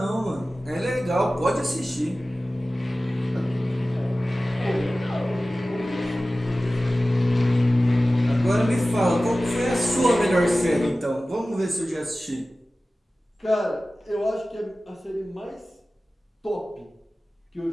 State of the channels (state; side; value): normal; both; correlation 0.96